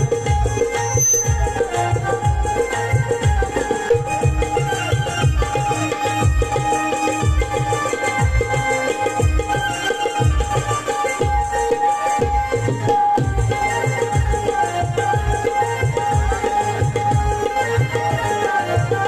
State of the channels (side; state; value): both; identical; correlation 1.00